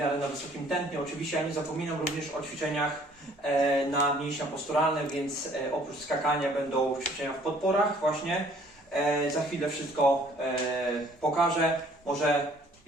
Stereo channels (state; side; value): normal; both; correlation 0.58